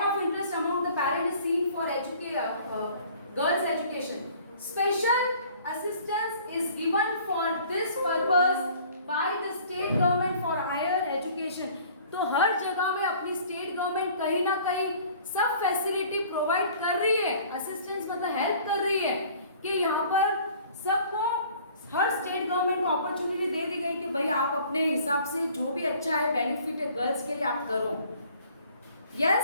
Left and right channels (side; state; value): both; inverted; correlation -0.52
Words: of interest among the parents is seen for girls' education. Special assistance is given for this purpose by the state government for higher education. तो हर जगह में अपनी स्टेट गवर्नमेंट कहीं ना कहीं सब फैसिलिटी प्रोवाइड कर रही है. असिस्टेंस मतलब हेल्प कर रही है कि यहाँ पर सबको, हर स्टेट गवर्नमेंट को अपॉर्चुनिटी दे दी गई कि भाई आप अपने हिसाब से जो भी अच्छा है बेनिफिट है गर्ल्स के लिए आप करो.